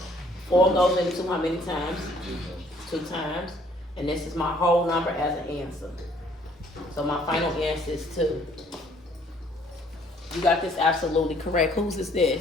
4 goes into how many times? 2 times. And this is my whole number as an answer. So my final answer is 2. You got this absolutely correct. Whose is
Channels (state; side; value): normal; both; correlation 0.61